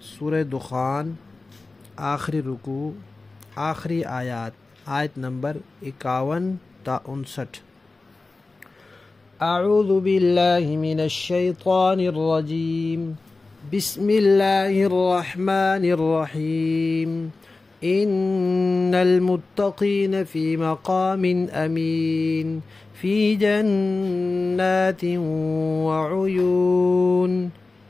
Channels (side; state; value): right; quieter; 3.5 dB